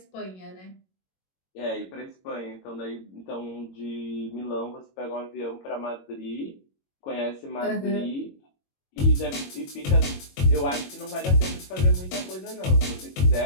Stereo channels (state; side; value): late; right; 22 ms